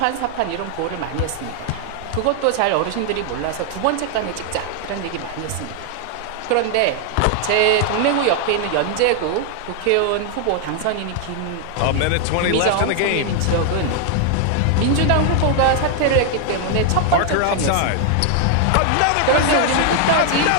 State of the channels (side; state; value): both; different; correlation 0.00